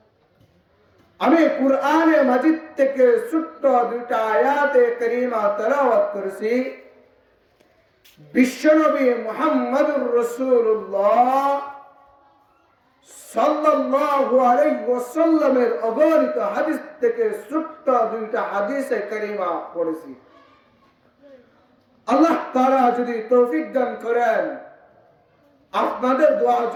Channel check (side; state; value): both; identical; correlation 1.00